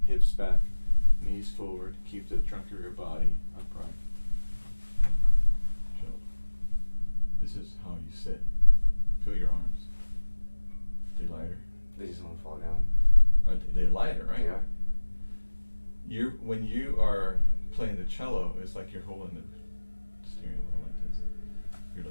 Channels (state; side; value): inverted; both; correlation -1.00